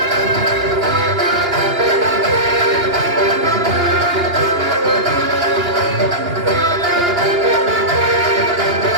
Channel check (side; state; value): left; late; 2.9 ms